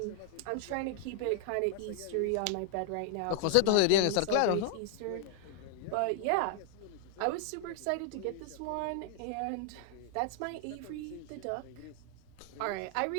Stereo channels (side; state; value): both; different; correlation 0.00